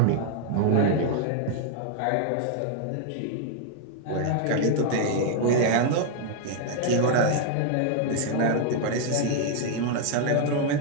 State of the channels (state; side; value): different; both; correlation 0.00